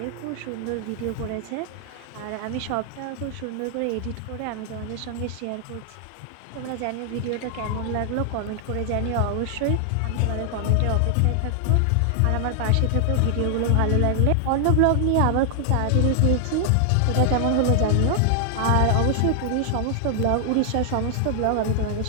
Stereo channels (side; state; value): both; different; correlation 0.00